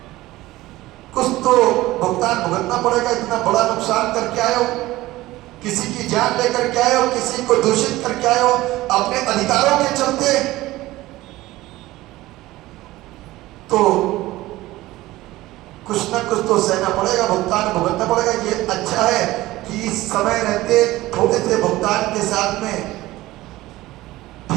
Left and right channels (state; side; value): quieter; left; 17.6 dB